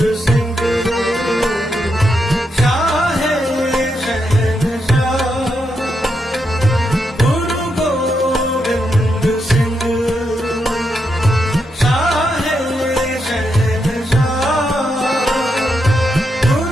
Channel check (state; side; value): normal; both; correlation 0.82